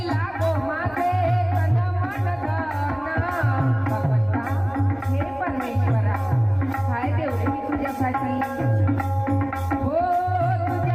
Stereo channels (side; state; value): left; noise; rumble, 26 dB below the sound